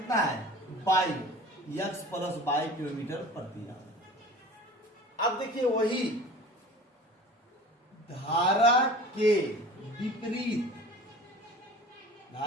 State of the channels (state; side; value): normal; both; correlation 0.40